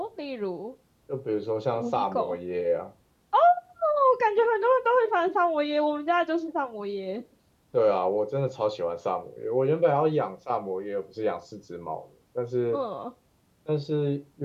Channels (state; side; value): identical; both; correlation 1.00